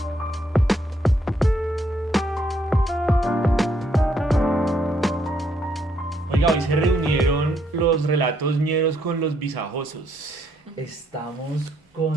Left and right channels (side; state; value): both; normal; correlation 0.72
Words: Oiga, hoy se reunieron los relatos ñeros con los visajosos. Estamos